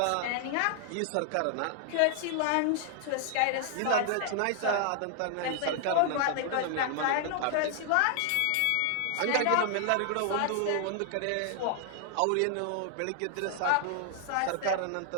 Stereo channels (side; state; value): both; different; correlation 0.00